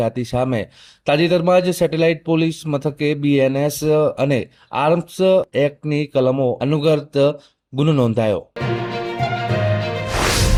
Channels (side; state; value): both; identical; correlation 1.00